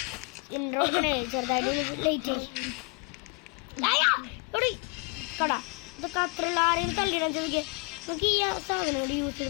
ഇൻട്രോഡിനെ ചെറുതായിട്ട് ലേറ്റ് കട ഇതൊക്കെ അത്രയുള്ള ആരെയും കളിക്കണം ചോദിക്കുക. നമുക്ക് ഈ സാധനം കൂടി യൂസ്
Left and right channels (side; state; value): right; quieter; 31.2 dB